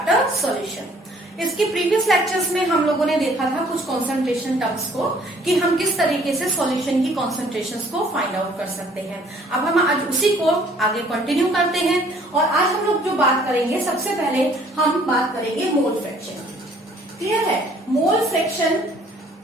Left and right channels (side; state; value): both; normal; correlation 0.58